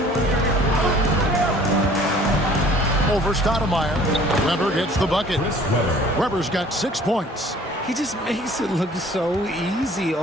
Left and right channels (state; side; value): normal; both; correlation 0.52